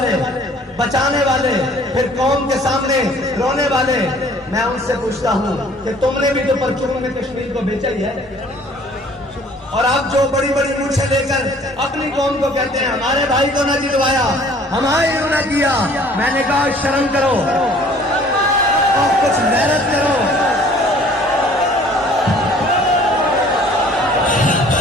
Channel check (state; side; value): normal; both; correlation 0.54